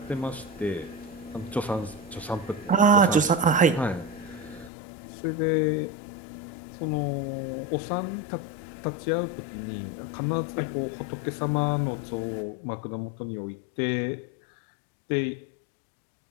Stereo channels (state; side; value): drops out; right; at 4.7 s